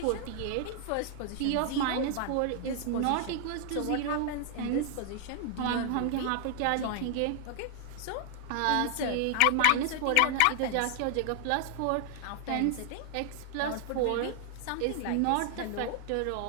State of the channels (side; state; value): both; different; correlation 0.00